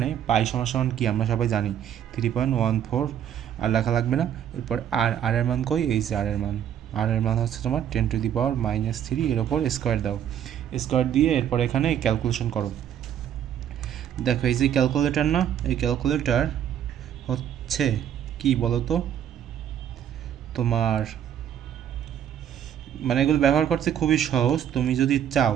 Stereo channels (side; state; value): left; quieter; 9.8 dB